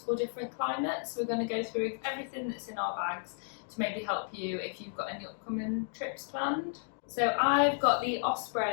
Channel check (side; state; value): right; silent; digital silence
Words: different climates. We're going to go through everything that's in our bags to maybe help you if you've got any upcoming trips planned. So I've got the